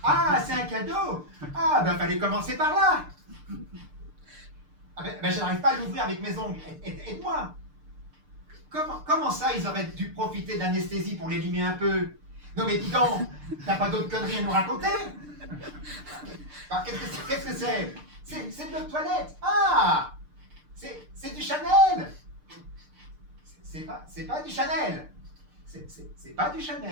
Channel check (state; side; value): late; left; 6.7 ms